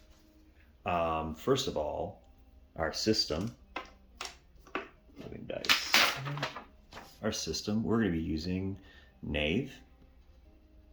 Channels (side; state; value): both; identical; correlation 1.00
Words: First of all, our system. Moving dice. Our system, we're going to be using Knave,